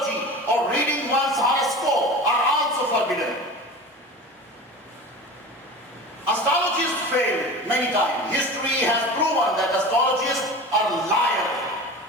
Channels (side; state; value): both; normal; correlation 0.34